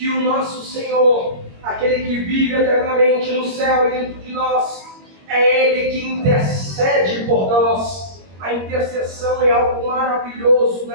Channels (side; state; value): left; late; 21 ms